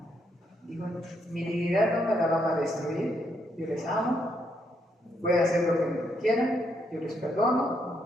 Digo, mi dignidad no me la van a destruir, yo les amo, pueden hacer lo que quieran, yo les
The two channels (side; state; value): both; normal; correlation 0.76